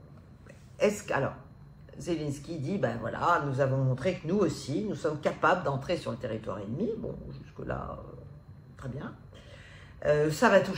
Alors, Zelensky dit, ben voilà, nous avons montré que nous aussi, nous sommes capables d'entrer sur le territoire ennemi. Bon, jusque-là, très bien. Ça va tout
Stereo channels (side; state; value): both; identical; correlation 1.00